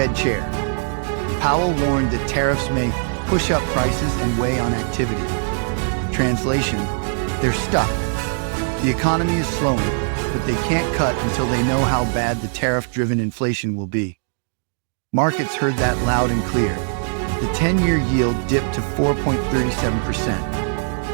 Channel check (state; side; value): silent; left; digital silence